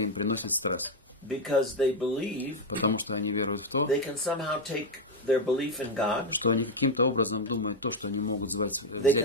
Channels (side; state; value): both; normal; correlation 0.04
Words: приносит стресс. because they believe потому что они веруют в то, they can somehow take their belief in God, что они каким-то образом думают то, что они могут взять свою